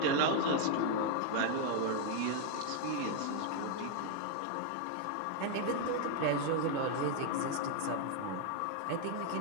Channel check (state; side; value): different; both; correlation 0.00